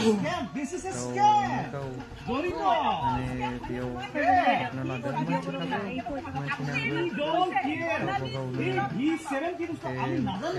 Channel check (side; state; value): both; identical; correlation 1.00